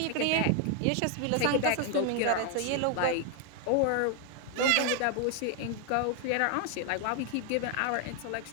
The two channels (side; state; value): both; different; correlation 0.01